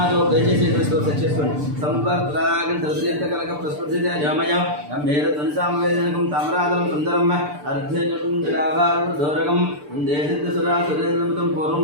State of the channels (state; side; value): late; left; 6.8 ms